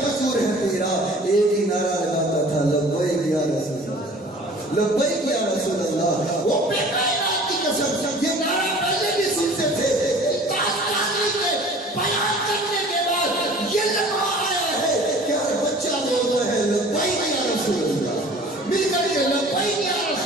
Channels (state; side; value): normal; both; correlation 0.47